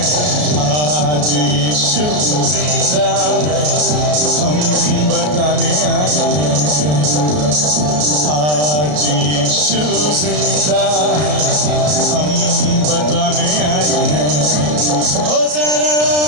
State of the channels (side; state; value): left; late; 33 ms